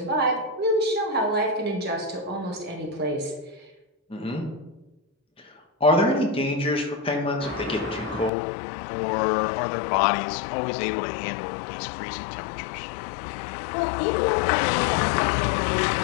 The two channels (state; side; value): drops out; right; at 8.3 s